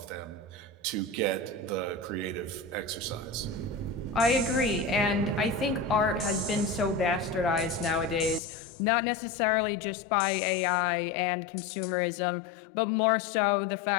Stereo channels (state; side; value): drops out; right; at 8.4 s